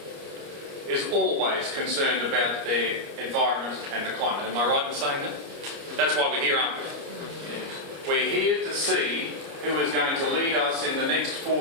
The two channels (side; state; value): left; late; 29 ms